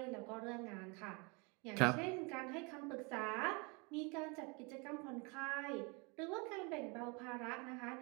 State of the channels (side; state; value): left; quieter; 30.4 dB